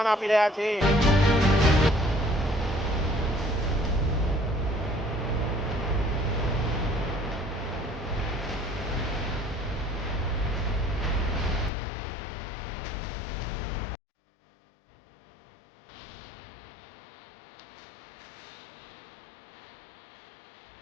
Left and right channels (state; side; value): drops out; right; at 11.7 s